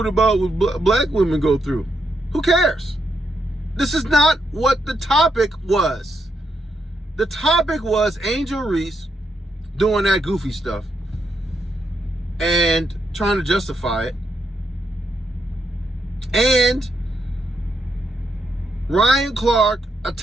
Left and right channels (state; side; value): normal; both; correlation 0.81